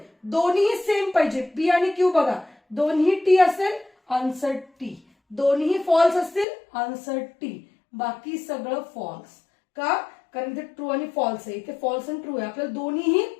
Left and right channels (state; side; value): drops out; right; at 6.5 s